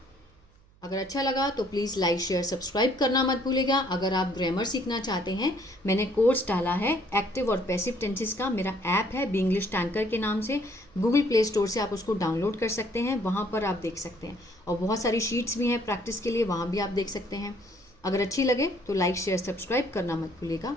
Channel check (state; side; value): noise; right; hum, 29 dB below the sound